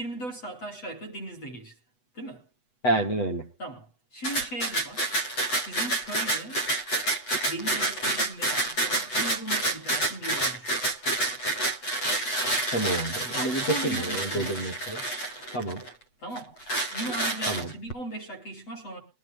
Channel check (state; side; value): late; right; 8.1 ms